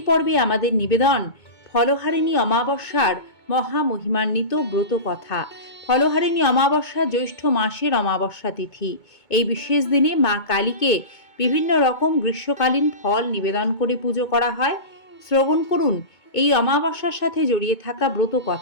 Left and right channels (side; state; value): right; late; 2.2 ms